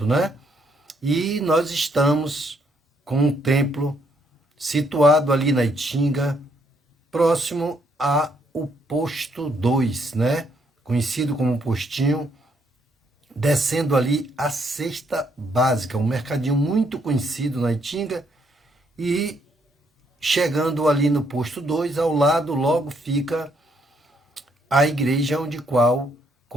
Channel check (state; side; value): normal; both; correlation 0.72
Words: E nós estamos com um templo situado ali na Itinga, próximo ao posto 2, Conhecido como postinho, descendo ali a cesta básica, um mercadinho muito conhecido na Itinga, e chegando ali no posto 2, ao lado logo fica a igreja onde qual